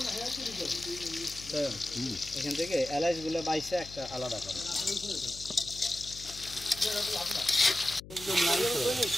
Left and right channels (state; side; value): noise; left; hum, 16 dB below the sound